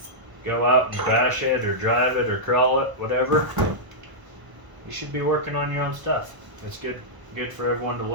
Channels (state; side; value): late; left; 1.0 ms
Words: go out and bash it or drive it or crawl it, whatever, you should be working on your own stuff. It's good for everyone to